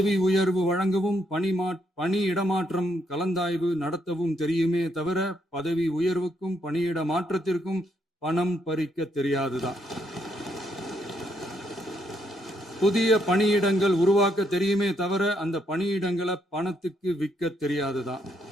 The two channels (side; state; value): both; normal; correlation 0.75